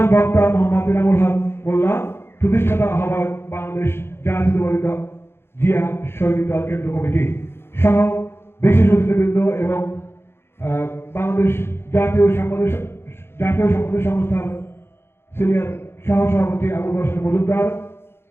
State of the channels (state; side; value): late; right; 0.11 ms